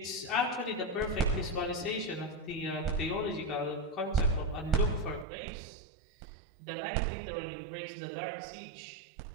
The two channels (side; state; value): left; drops out; at 5.2 s